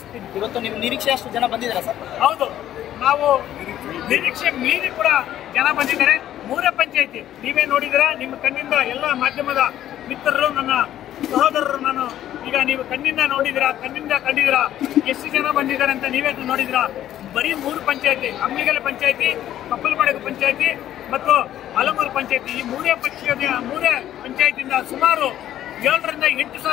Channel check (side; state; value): right; quieter; 12.0 dB